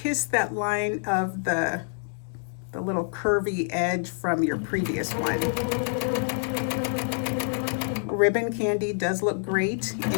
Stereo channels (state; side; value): silent; right; digital silence